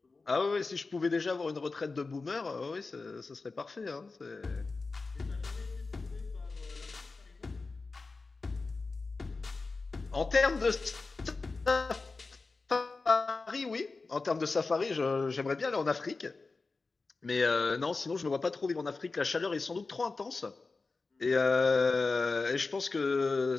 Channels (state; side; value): quieter; right; 3.9 dB